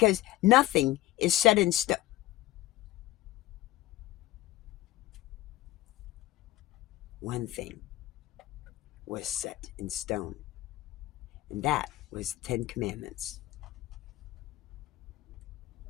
nothing is set in stone. One thing was set in stone. And that was the 10 Commandments.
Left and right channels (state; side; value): quieter; right; 16.3 dB